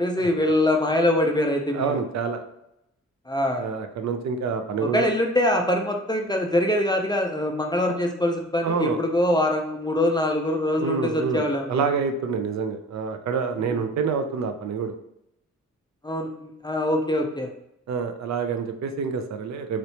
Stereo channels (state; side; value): normal; both; correlation 0.44